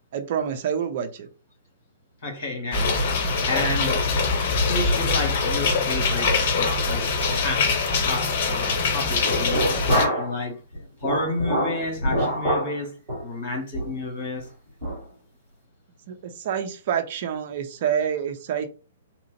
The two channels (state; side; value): inverted; both; correlation -0.44